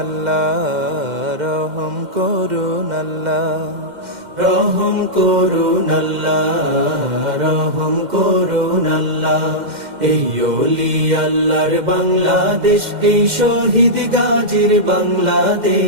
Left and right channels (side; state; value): left; late; 2.1 ms